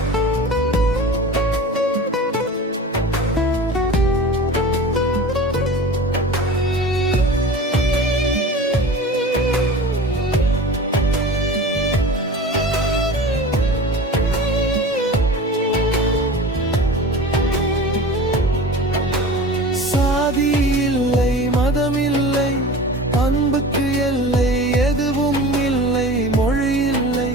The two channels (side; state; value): both; normal; correlation 0.36